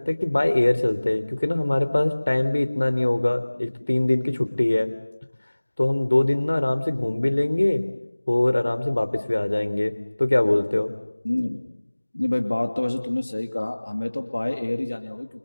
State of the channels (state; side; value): inverted; both; correlation -1.00